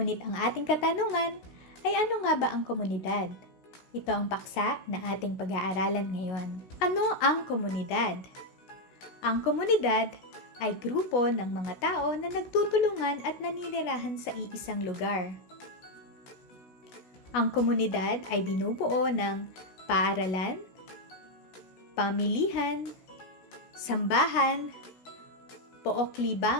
ang ating katanungan ay ano nga ba ang komunidad? Ito ang paksa na ating pag-aaralan ngayon. Ano ang komunidad? Ang komunidad ay grupo ng mga tao na nagtutulungan at naninirahan sa iisang lugar. Ang komunidad ay binubuo ng paaralan, pamilihan, sambahan,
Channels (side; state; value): right; late; 16 ms